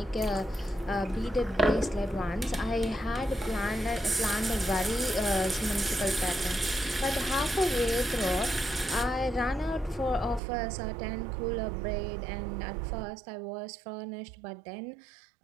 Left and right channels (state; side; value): drops out; left; at 10.4 s